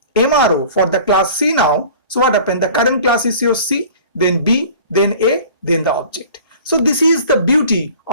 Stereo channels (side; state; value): both; inverted; correlation -0.45